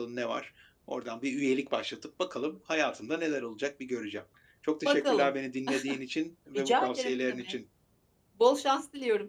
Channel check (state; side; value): identical; both; correlation 1.00